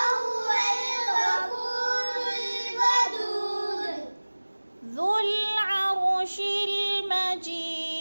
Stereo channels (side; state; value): both; inverted; correlation -1.00